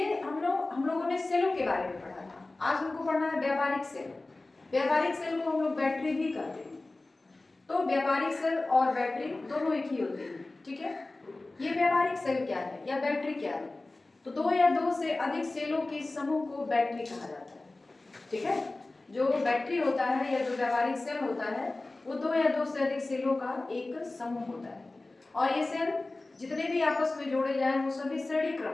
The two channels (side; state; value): right; quieter; 3.1 dB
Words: हम लोगों ने सेलों के बारे में पढ़ा था। आज हमको पढ़ना है व्यावहारिक सेल। व्यावहारिक सेल को हम लोग बैटरी भी कहते हैं। तो व्यावहारिक सेल और बैटरी दोनों एक ही होते हैं। ठीक है, ये व्यावहारिक सेल क्या है या बैटरी क्या है? तो दो या दो से अधिक सेलों के समूह को बैटरी कहा जाता है। ठीक है, जो बैटरी होता है या जो व्यावहारिक सेल होता है वो दो या दो से अधिक सेलों का एक समूह होता है। और ये सेल जितने भी आपस में जोड़े जाए वो सभी श्रेणी